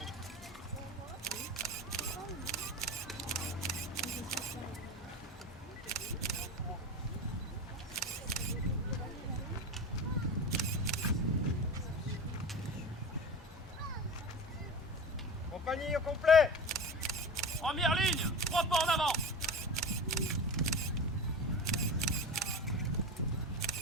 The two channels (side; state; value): both; normal; correlation 0.29